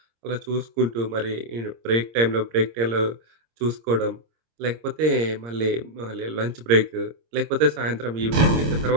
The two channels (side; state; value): left; late; 26 ms